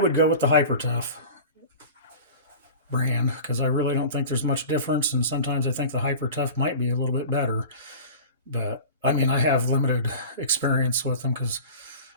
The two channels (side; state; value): both; inverted; correlation -0.36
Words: go with the Hyper Tough brand, because I really don't think there's much difference, and sometimes I think the Hyper Tough might be a little bit better. But I have limited experience with them, because